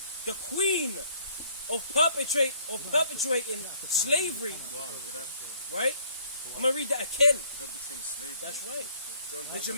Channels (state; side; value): inverted; both; correlation -0.61